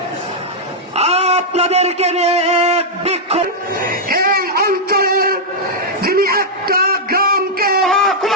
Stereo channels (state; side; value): normal; both; correlation -0.06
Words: আপনাদেরকে নিয়ে এক বিক্ষোভ এই অঞ্চলের যিনি একটা গ্রামকে